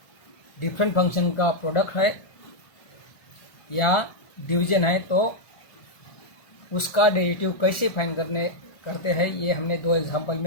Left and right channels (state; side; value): late; right; 1.4 ms